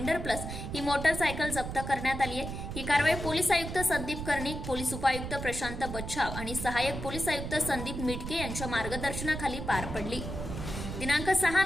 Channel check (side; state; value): right; noise; rumble, 6 dB below the sound